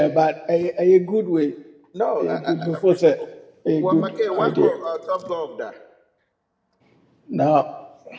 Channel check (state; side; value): identical; both; correlation 1.00